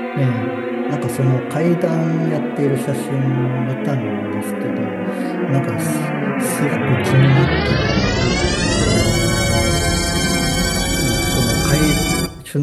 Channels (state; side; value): identical; both; correlation 1.00